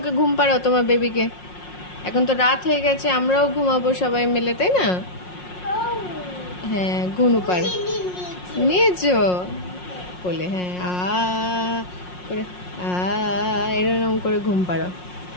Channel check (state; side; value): late; right; 5.5 ms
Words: ঘুম পাড়াও তোমার বেবিকে। এখন তো রাত হয়ে গেছে, আমরাও ঘুমাবো সবাই মিলে, তাই না? হ্যাঁ, ঘুনু পাড় নিয়েছো কোলে? হ্যাঁ, করে এরকম করে ঘুম পাড়াও।